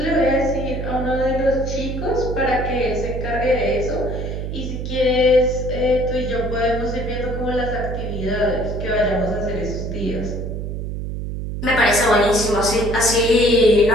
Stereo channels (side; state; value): right; noise; hum, 5 dB below the sound